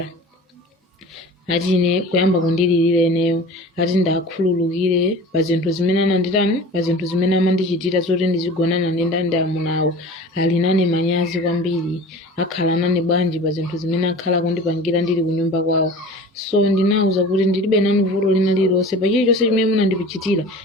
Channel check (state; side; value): normal; both; correlation 0.39